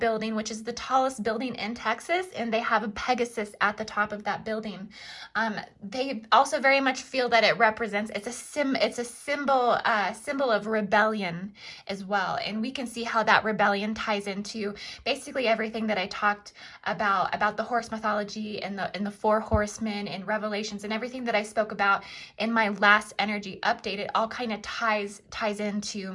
which is the tallest building in Texas, and they have a Pegasus at the top of that building. They also very much feel that it represents, it's a symbol of rebellion as well. And we can see how that rebellion ties into basically everything that I talked about the horse mythology and the four horsemen and Revelations and everything that I spoke about in my last energy update. It all kind of ties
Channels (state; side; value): identical; both; correlation 1.00